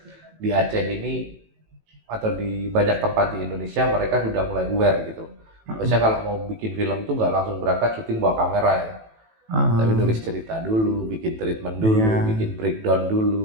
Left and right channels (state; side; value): late; left; 18 ms